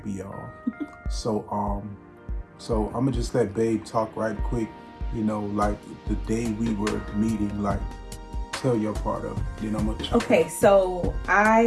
y'all. So I'm gonna just let Babe talk right quick. You know, like the day we were meeting, like tell your part of it. Then I'm gonna. Okay, so I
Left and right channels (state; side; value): identical; both; correlation 1.00